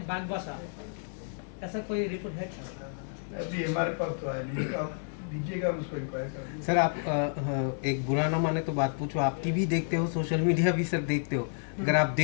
बागबासा, ऐसा कोई रिपोर्ट है? अभी हमारे पास तो आया नहीं, तो आप दीजिएगा, हम उसको इंक्वायर करेंगे। सर आप एक बुरा ना माने तो बात पूछो, आप टीवी देखते हो, सोशल मीडिया भी सर देखते हो। अगर आप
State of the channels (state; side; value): silent; right; digital silence